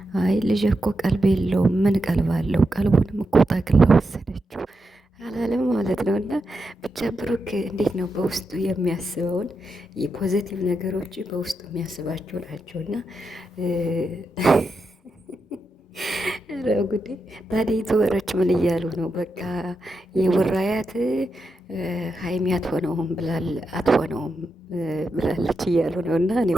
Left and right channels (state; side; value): normal; both; correlation 0.86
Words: አይ ልጅ እኮ ቀልብ የለውም ምን ቀልብ አለው ቀልቡንም እኮ ጠቅላ ወሰደችው አላለም ማለት ነው። እና ብቻ ብሩክ እንዴት ነው በውስጡ የሚያስበውን የፖዘቲቭ ነገሮች በውስጡ የሚያስባቸው ናቸውና ጉዴ ታዲያ ዩቱበሮች ምን እያሉ ነው? በቃ የቡራያት ሀይሚ አትሆነውም ብላለች እያሉ ነው። እና እኔ